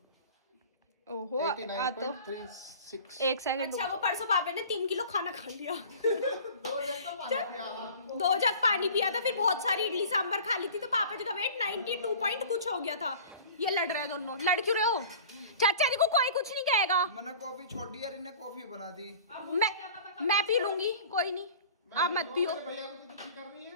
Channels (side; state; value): both; inverted; correlation -0.42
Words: ओहो आ तो 89.36। 1 सेकंड। अच्छा वो परसों पापा ने 3 किलो खाना खा लिया। 2 जग पानी पिया था, फिर बहुत सारी इडली सांभर खा ली थी। तो पापा जी का वेट 92 पॉइंट कुछ हो गया था। ये लड़ रहे हैं दोनों। लड़ क्यों रहे हो? चाचा जी को कोई कुछ नहीं कहेगा। मैंने कॉफी छोड़ दी यार, इन्हें कॉफी बना दी। मैं पी लूंगी, कोई नहीं, आप मत पियो। भैया को तो दुखी कर रही है।